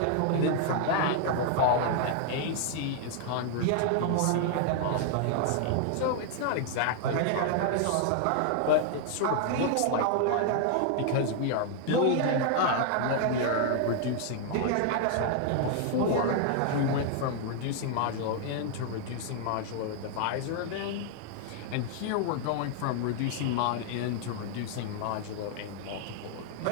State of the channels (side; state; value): both; different; correlation 0.00